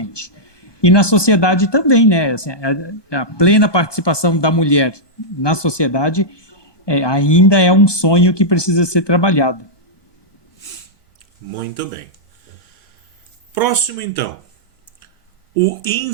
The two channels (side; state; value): right; late; 1.2 ms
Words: E na sociedade também, né? Assim, a plena participação da mulher na sociedade ainda é um sonho que precisa ser trabalhado. Muito bem. Próximo, então. O